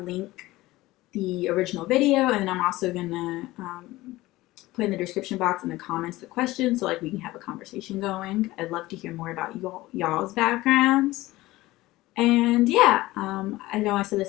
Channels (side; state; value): right; quieter; 18.3 dB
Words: the original video, and then I'm also going to put in the description box in the comments the questions, so we can have a conversation going. I'd love to hear more about y'all's backgrounds. And yeah, I know I said